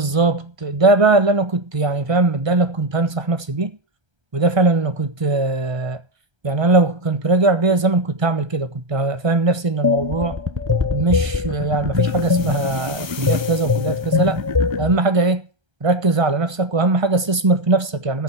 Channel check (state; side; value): late; left; 1.3 ms